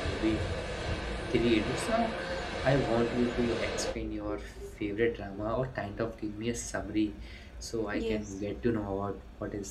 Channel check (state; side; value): identical; both; correlation 1.00